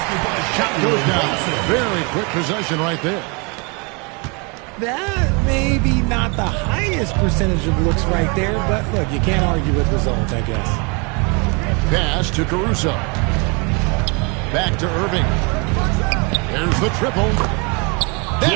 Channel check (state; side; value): quieter; left; 31.8 dB